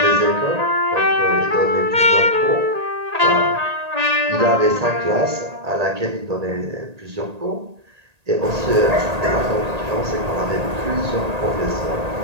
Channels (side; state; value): left; late; 1.8 ms